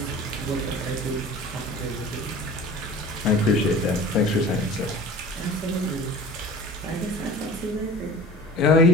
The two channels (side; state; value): both; normal; correlation 0.40